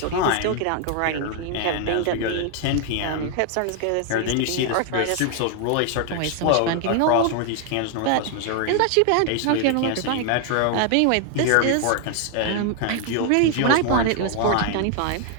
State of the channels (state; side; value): different; both; correlation 0.00